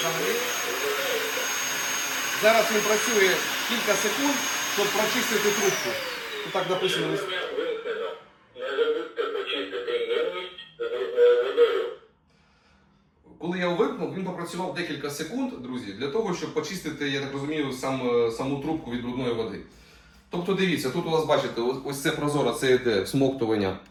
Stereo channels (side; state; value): both; identical; correlation 1.00